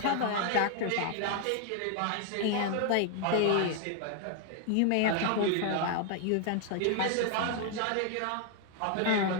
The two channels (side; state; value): both; different; correlation 0.00